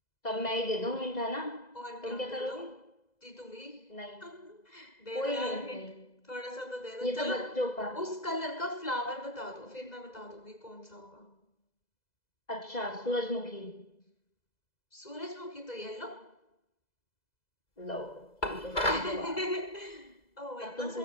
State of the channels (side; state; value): right; late; 2.0 ms